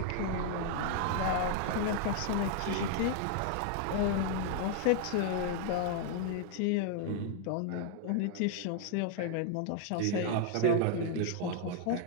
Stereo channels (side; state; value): both; different; correlation 0.00